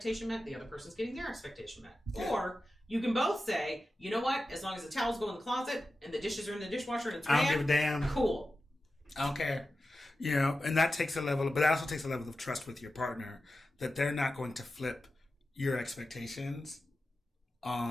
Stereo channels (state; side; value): normal; both; correlation 0.93